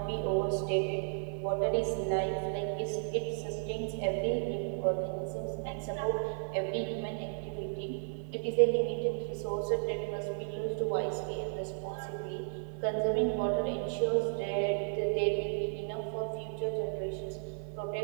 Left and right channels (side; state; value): left; silent; digital silence